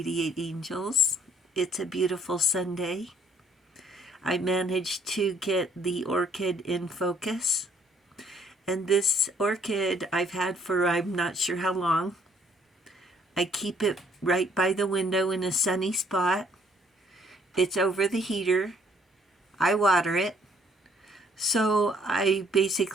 Angels. It's a beautiful Sunday. I managed to get the orchid in focus. And this orchid I've had for I'm not sure how long. I keep it right by the window in a sunny spot. It's over the heater. I water it. So I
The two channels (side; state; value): both; normal; correlation 0.64